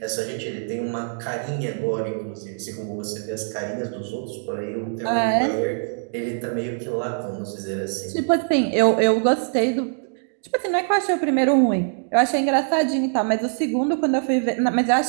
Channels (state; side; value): silent; left; digital silence